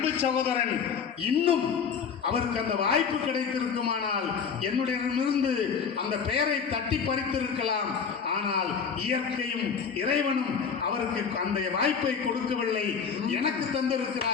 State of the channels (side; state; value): right; quieter; 6.4 dB